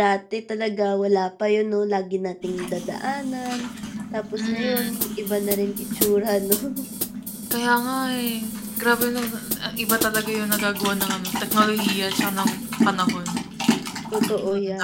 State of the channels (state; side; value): identical; both; correlation 1.00